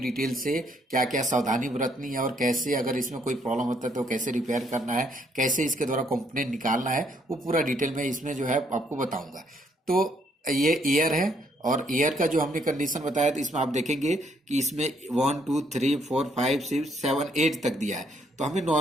से क्या क्या सावधानी बरतनी है और कैसे अगर इसमें कोई प्रॉब्लम होता है तो कैसे रिपेयर करना है, कैसे इसके द्वारा कंपोनेंट निकालना है, वो पूरा डिटेल में इसमें जो है आपको बताऊंगा। तो ये एयर है और एयर का जो हमने कंडीशन बताया तो इसमें आप देखेंगे कि इसमें 1 2 3 4 5 6 7 8 तक दिया है। तो हमें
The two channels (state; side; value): normal; both; correlation 0.70